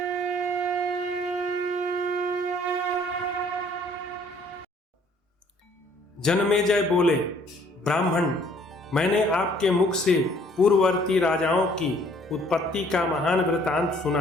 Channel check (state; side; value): normal; both; correlation 0.60